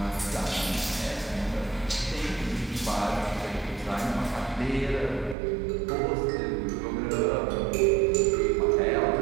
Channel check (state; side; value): drops out; left; at 5.4 s